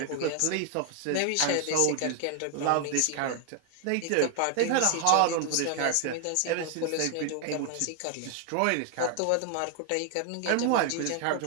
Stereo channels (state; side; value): different; both; correlation 0.00